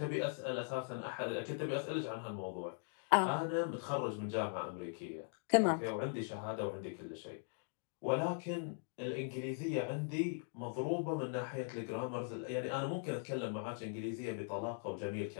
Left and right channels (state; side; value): silent; right; digital silence